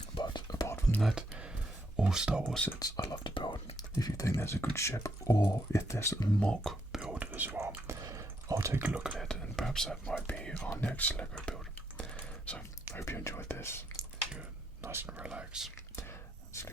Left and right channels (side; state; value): both; normal; correlation 0.77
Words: But apart from that, all Star Wars sets I love to build. If you think there's a good ship, or if there's a mock build as well, I'll take a look at it, and perhaps that might be our next Lego build. So, I hope you enjoyed this. You're nice and relaxed.